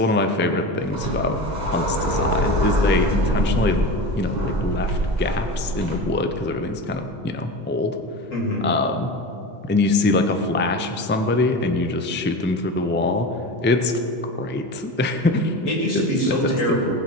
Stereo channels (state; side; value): normal; both; correlation 0.27